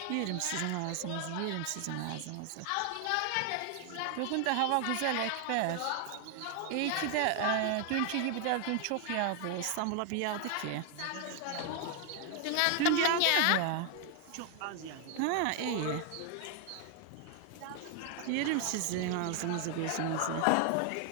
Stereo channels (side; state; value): both; different; correlation 0.00